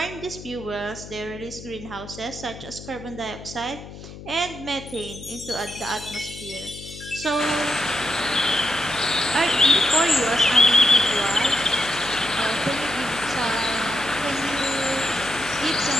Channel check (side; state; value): left; noise; hum, 14 dB below the sound